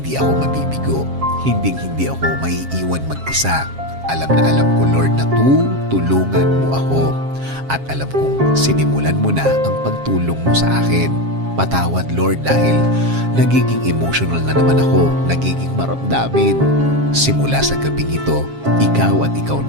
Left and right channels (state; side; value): late; left; 7.4 ms